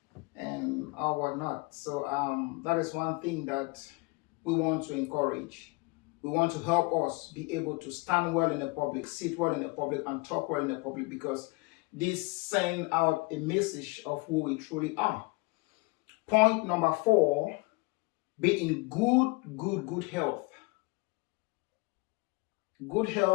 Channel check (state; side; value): quieter; right; 26.7 dB